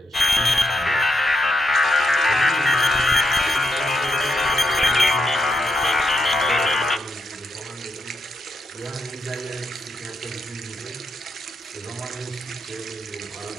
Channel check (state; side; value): normal; both; correlation 0.82